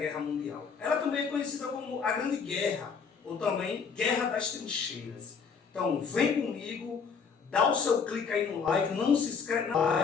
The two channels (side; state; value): right; quieter; 5.8 dB